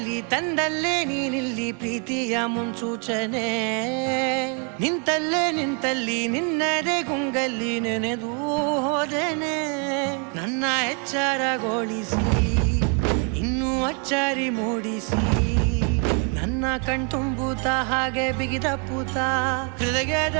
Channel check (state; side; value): quieter; left; 37.1 dB